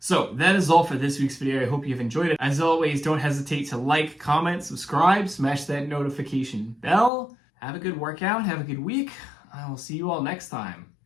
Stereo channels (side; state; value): right; drops out; at 7.1 s